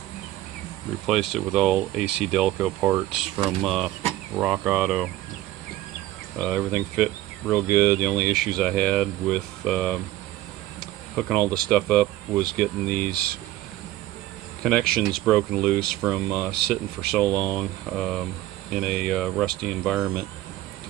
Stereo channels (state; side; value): quieter; left; 15.1 dB